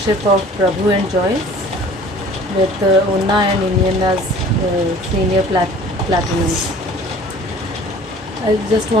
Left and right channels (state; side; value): normal; both; correlation 0.48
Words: of Prabhu and Joyce with Unna and Indian as senior platinum. I just